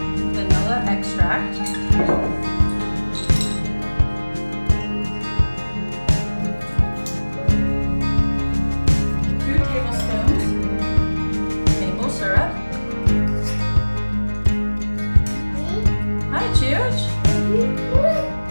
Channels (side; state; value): both; inverted; correlation -1.00